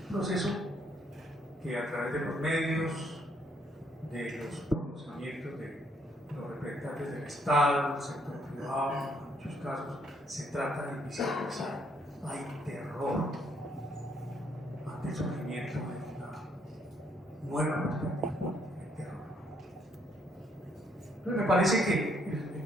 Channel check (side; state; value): both; normal; correlation 0.70